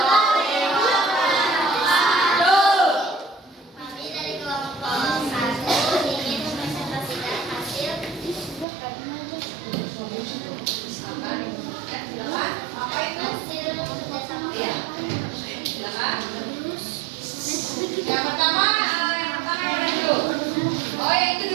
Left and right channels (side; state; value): left; drops out; at 8.7 s